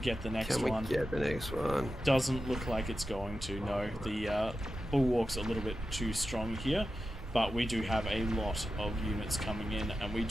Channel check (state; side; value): normal; both; correlation 0.92